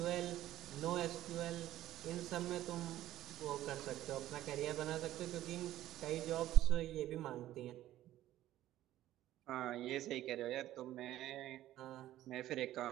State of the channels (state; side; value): quieter; left; 13.9 dB